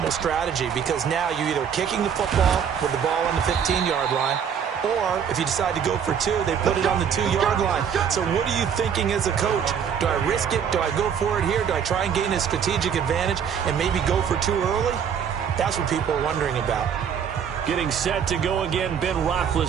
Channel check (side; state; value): left; quieter; 7.8 dB